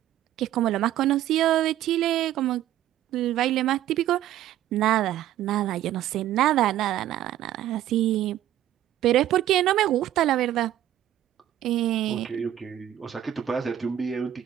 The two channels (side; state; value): left; quieter; 12.4 dB